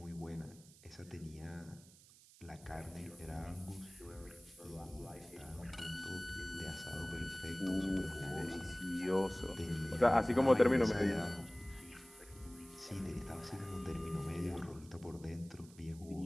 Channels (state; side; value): noise; right; hiss, 23 dB below the sound